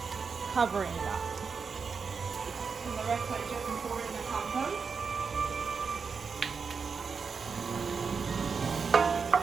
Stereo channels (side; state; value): left; quieter; 5.5 dB